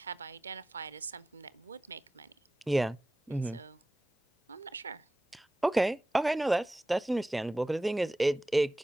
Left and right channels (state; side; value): normal; both; correlation 0.95